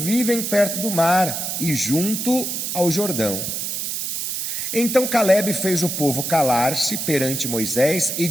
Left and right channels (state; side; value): noise; right; hiss, 3 dB below the sound